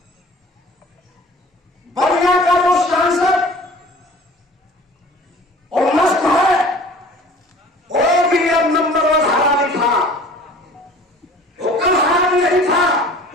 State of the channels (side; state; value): both; normal; correlation 0.47